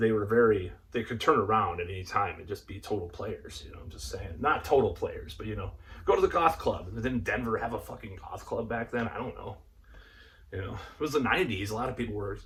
could turn around at any time and just be total players. You know, I'm just saying. Not total players, but, you know, go to the goth club. Didn't Denver have a fucking goth club back then? I don't know. You know, it was the 90s. A lot of people were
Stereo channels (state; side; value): identical; both; correlation 1.00